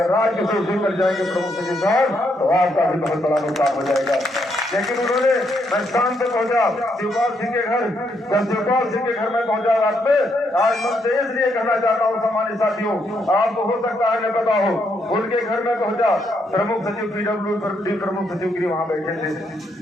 राजकिशोर सिंह कर जाएंगे प्रमुख सचिव साहब तो आपका भी बहुत बड़ा नुकसान हो जाएगा। लेकिन उन्होंने मैं शाम पे पहुंचा शिवपाल सिंह के घर, जब शिवपाल सिंह के घर में पहुंचा रात में, आज मन से इसलिए कहना चाहता हूँ सम्मानित साथियों, आपको हो सकता है न पता हो, उनके घर में पहुंचा प्रमुख सचिव पीडब्ल्यूडी प्रमुख सचिव गिरी वहाँ बैठे थे,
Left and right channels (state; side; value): normal; both; correlation 0.76